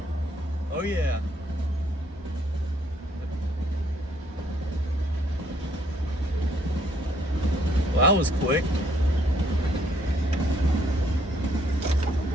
Oh yeah. Well, that was quick.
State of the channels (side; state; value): both; normal; correlation 0.67